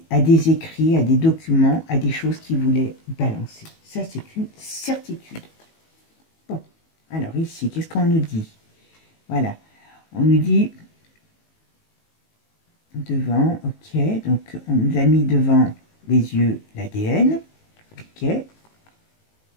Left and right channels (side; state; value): right; late; 18 ms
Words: écrits, à des documents, à des choses qu'ils voulaient balancer. Ça, c'est une certitude. Bon, alors ici, qu'est-ce qu'on nous dit? Voilà, on nous dit devant, ok, donc on nous a mis devant mes yeux, l'ADN, ok,